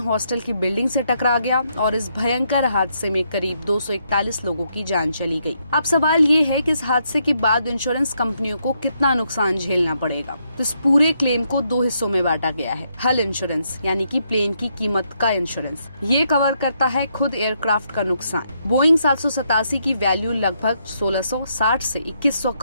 की बिल्डिंग से टकरा गया और इस भयंकर हादसे में करीब 241 लोगों की जान चली गई। अब सवाल ये है कि इस हादसे के बाद इंश्योरेंस कंपनियों को कितना नुकसान झेलना पड़ेगा। तो इस पूरे क्लेम को 2 हिस्सों में बांटा गया है। हल इंश्योरेंस यानी कि प्लेन की कीमत का इंश्योरेंस, ये कवर करता है खुद एयरक्राफ्ट का नुकसान। बोइंग 787 की वैल्यू लगभग 1660 से 2100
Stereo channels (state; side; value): inverted; both; correlation -0.77